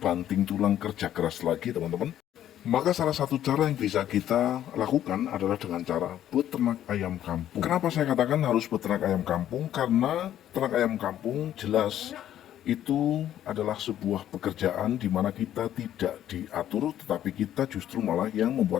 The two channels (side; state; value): right; quieter; 11.5 dB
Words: banting tulang kerja keras lagi teman-teman. Maka salah satu cara yang bisa kita lakukan adalah dengan cara beternak ayam kampung. Kenapa saya katakan harus beternak ayam kampung? Karena ternak ayam kampung jelas itu adalah sebuah pekerjaan di mana kita tidak diatur, tetapi kita justru malah yang